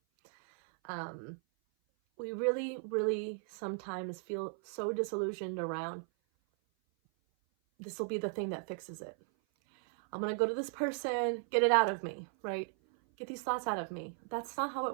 We really, really sometimes feel so disillusioned around, this will be the thing that fixes it. I'm going to go to this person, get it out of me, right? Get these thoughts out of me. That's not how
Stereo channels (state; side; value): silent; left; 54 dB below the other